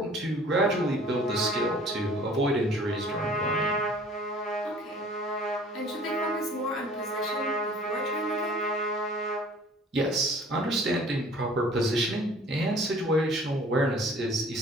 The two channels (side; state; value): both; normal; correlation 0.50